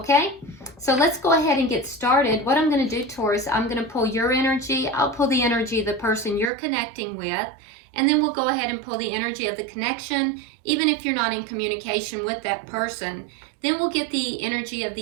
so let's go ahead and get started. What I'm going to do, Taurus, I'm going to pull your energy, I'll pull the energy of the person you're connecting with, and then we'll go ahead and pull the energy of the connection, even if you're not in communication with that person. Then we'll get the energy of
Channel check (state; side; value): drops out; left; at 6.5 s